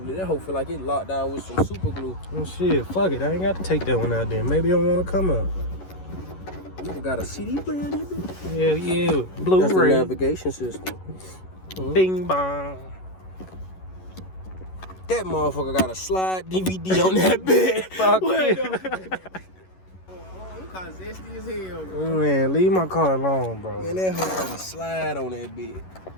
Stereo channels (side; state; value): right; late; 11 ms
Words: That hoe feel like it locked down with some super glue. Oh shit, fuck it. I ain't got to take that one out there. Maybe I don't want to come out. You got a CD player in it, bitch? Yeah, yeah. Blu-ray. That's the navigation system. Bing bong. That motherfucker got a slide DVD on that bed. Fuck Wait, you. you kinda zesty as hell, bro. Man, leave my car alone, bro. Man, that hoe got a slide on that bed.